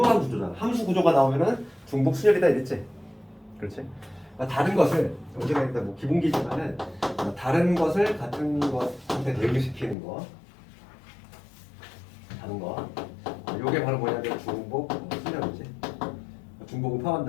구조잖아. 함수 구조가 나오면은 중복 순열이다 이랬지. 그렇지? 그러니까 다른 것을 언제가 일단 뭐 기본기지만은 다른 것을 같은 것한테 대응시키는 거, 다른 거. 요게 바로 뭐냐면 중복 순열이지. 중복은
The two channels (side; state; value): right; drops out; at 10.0 s